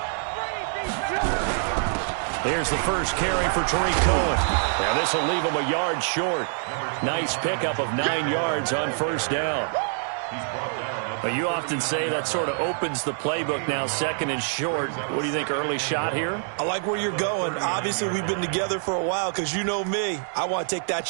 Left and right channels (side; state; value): left; silent; digital silence